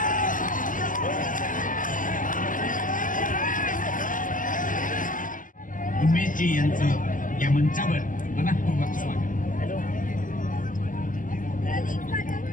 उमेशजी यांचं या मंचावर मनःपूर्वक स्वागत.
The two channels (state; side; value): late; right; 0.38 ms